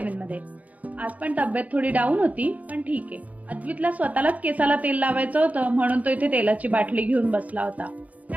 मध्ये. आज पण तब्येत थोडी डाऊन होती, पण ठीक आहे. अद्वितला स्वतःलाच केसाला तेल लावायचं होतं म्हणून तो इथे तेलाची बाटली घेऊन बसला होता.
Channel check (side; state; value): left; late; 0.072 ms